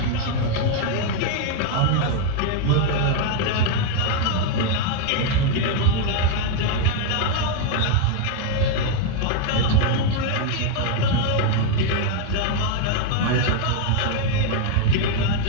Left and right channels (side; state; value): both; different; correlation 0.01